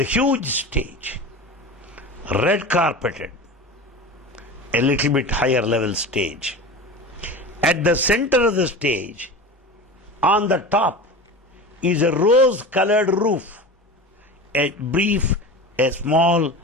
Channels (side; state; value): both; normal; correlation 0.31